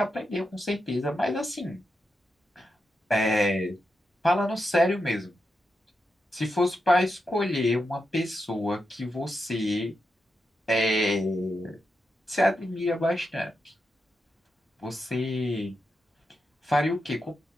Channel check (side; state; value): both; normal; correlation 0.87